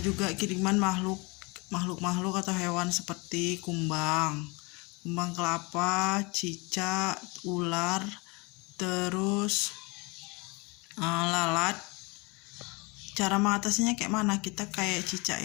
juga kiriman makhluk atau hewan seperti kumbang kelapa, cicak, ular, terus lalat. Cara mengatasinya kayak mana? Kita kayak cicak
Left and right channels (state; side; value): quieter; right; 27.6 dB